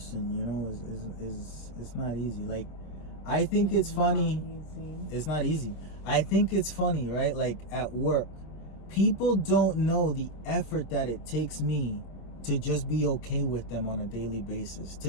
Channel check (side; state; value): right; late; 26 ms